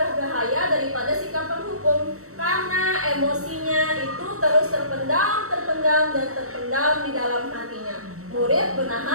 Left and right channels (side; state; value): left; late; 0.64 ms